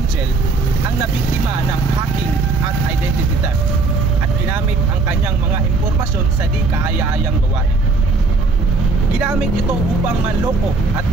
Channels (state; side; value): quieter; left; 3.7 dB